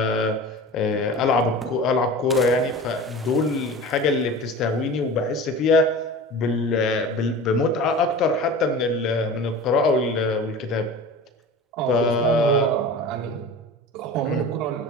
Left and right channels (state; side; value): normal; both; correlation 0.36